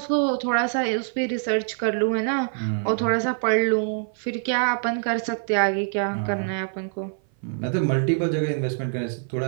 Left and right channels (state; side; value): silent; left; 56 dB below the other